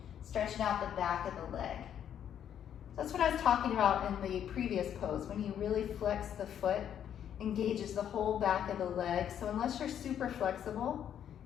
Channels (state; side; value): quieter; right; 9.5 dB